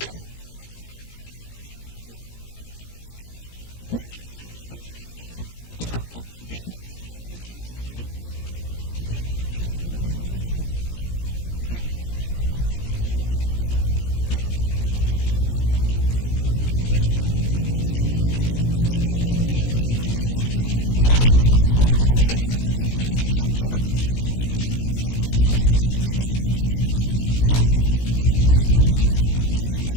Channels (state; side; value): late; right; 17 ms